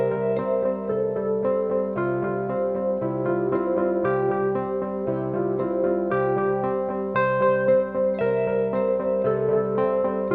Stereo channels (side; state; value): both; identical; correlation 1.00